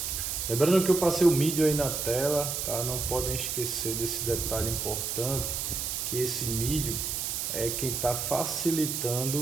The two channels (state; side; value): noise; right; hiss, 2 dB below the sound